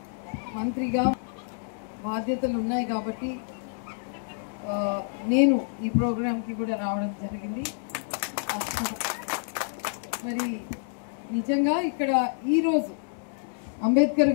మంత్రిగా బాధ్యతలు ఉన్నాయి కాబట్టి నేను ఈ ప్రోగ్రాంకి కూడా రావడం జరిగింది. మరి నిజంగా ఇక్కడ ఈరోజు అంబేద్కర్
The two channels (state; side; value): silent; right; digital silence